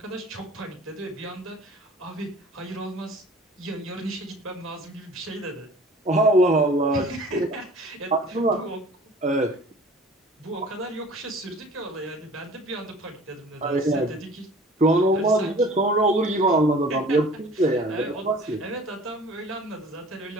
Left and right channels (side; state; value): both; normal; correlation 0.47